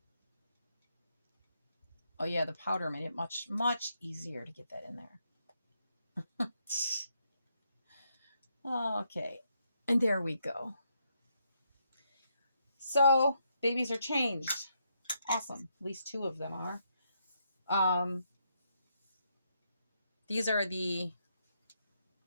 Oh yeah, the powder made it much, much easier to get that in there. Okay, and there we go. So babies are changed. Awesome. At least 2 of them are. These are the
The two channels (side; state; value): both; inverted; correlation -0.77